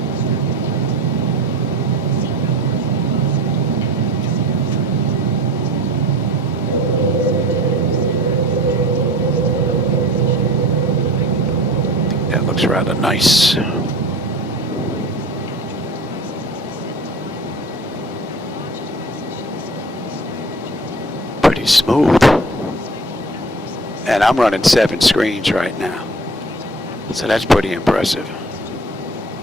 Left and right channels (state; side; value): normal; both; correlation 0.41